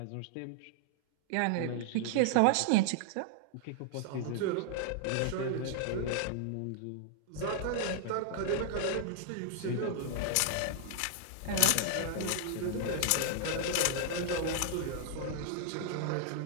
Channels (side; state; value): both; different; correlation -0.01